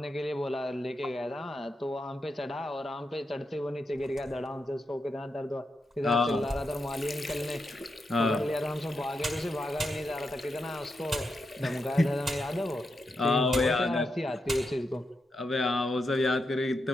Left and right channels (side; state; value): both; normal; correlation 0.85